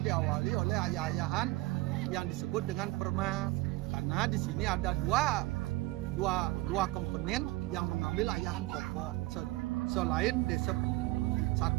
diawali oleh ayah-ayahan yang disebut dengan permas, karena di sini ada dua komponen yang mengambil ayahan pokok selain desa.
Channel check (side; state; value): left; quieter; 19.6 dB